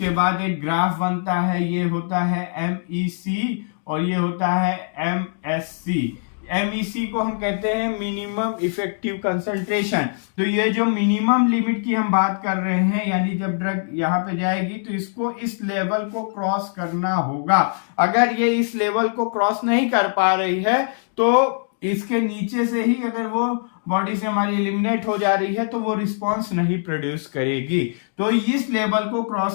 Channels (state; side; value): silent; right; digital silence